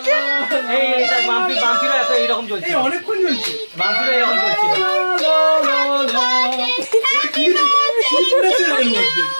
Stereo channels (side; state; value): both; inverted; correlation -1.00